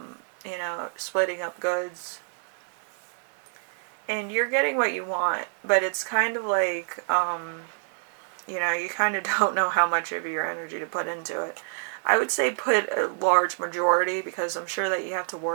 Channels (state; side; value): silent; left; digital silence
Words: splitting up goods. And you're getting what you want, but it's kind of like, you kind of don't know how much of your energy to put into it. I would say put a large majority, because I'm sure that you have to